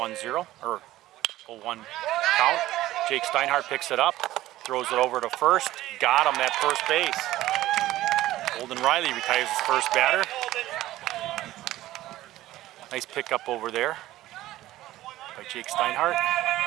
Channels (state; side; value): quieter; left; 15.5 dB